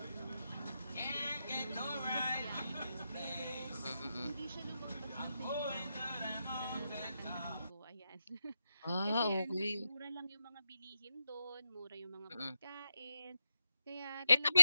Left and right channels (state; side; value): inverted; both; correlation -0.88